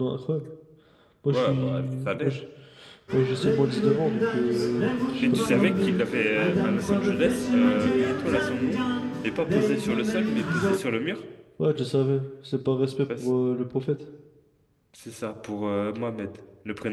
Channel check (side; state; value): both; identical; correlation 1.00